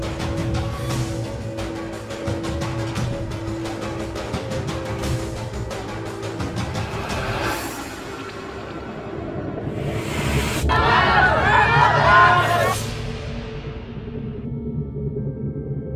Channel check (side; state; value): both; identical; correlation 1.00